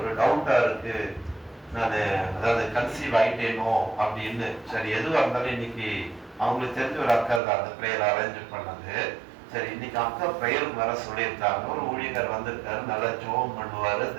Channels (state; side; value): drops out; left; at 7.4 s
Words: ஒரு டவுட்டா இருக்கு, நான் அதாவது கன்சீவ் ஆயிட்டேனோ அப்படின்னு. சரி, எதுவாக இருந்தாலும் இன்னைக்கு அவங்களுக்கு தெரிஞ்ச ஒரு அக்கா தான் அந்த ப்ரேயர் அரேஞ்ச் பண்ணது. சரி, இன்னைக்கு அக்கா ப்ரேயருக்கு வர சொல்லியிருக்காங்க. ஒரு ஊழியர் வந்திருக்காரு, நல்லா ஜோம் பண்ணுவாரு,